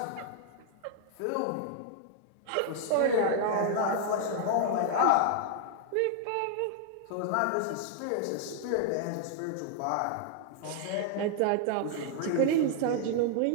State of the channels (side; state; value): both; different; correlation -0.01